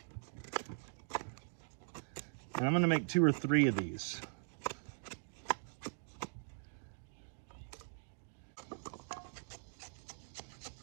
And I'm gonna make 2 or 3 of these.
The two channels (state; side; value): silent; left; digital silence